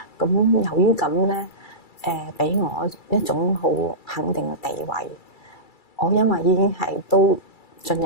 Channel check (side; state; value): right; late; 2.3 ms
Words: 咁由於咁咧，俾我一種好肯定嘅地位。我因為已經係都進